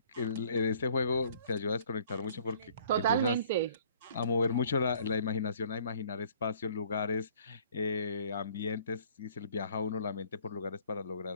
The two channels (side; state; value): both; inverted; correlation -0.56